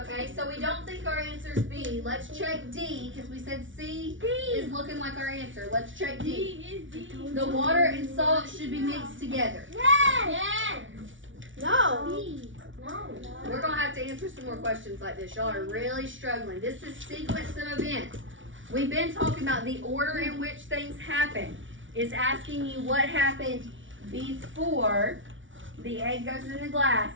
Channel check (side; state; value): left; late; 0.56 ms